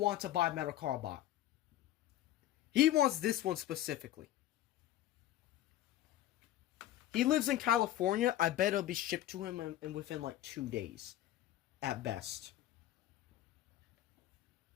to buy Metal Cardbot. He wants this one specifically. He lives in California. I bet it'll be shipped to him within like 2 days. At best.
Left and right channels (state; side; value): quieter; right; 13.4 dB